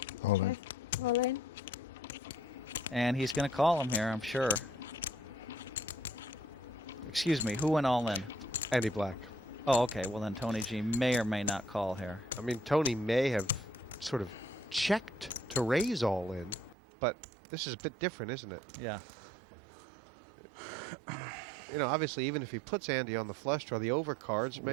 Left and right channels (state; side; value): drops out; left; at 16.8 s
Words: All in. All in. And he's going to call him here, I'm sure. Excuse me, who went all in? Andy Black. Oh, okay. Well, then Tony G may or may not call here. I mean, Tony may have sort of checked to raise all in, but this is a bit different, isn't it? Yeah. You know, obviously, even if he puts Andy on the flush draw, the overcards